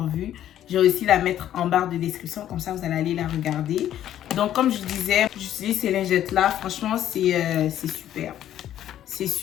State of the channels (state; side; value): quieter; right; 11.6 dB